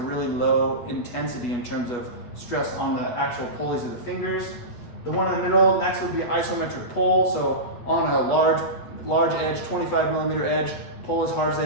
low intensity in terms of stress on the actual pulleys of the fingers. The one in the middle next would be isometric pull. So on a large edge, 25 millimeter edge, pull as hard as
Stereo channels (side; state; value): right; late; 8.3 ms